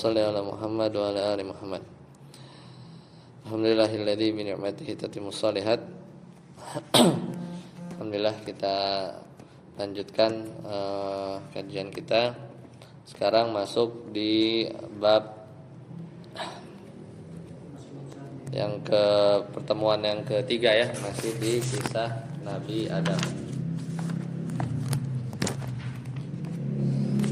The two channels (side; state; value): both; identical; correlation 1.00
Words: ala Muhammad wa ala ali Muhammad. Alhamdulillahilladzi bi ni'matihi tatimmus shalihat. Alhamdulillah, kita lanjutkan kajian kita. Sekarang masuk di bab yang pertemuan yang ketiga ya, masih di kisah Nabi Adam.